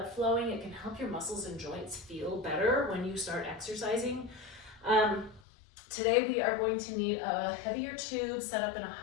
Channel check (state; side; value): drops out; right; at 5.4 s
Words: flowing. It can help your muscles and joints feel better when you start exercising. Today we are going to need a heavier tube set up in a